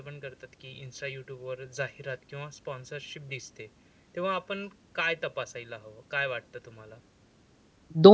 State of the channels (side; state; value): both; identical; correlation 1.00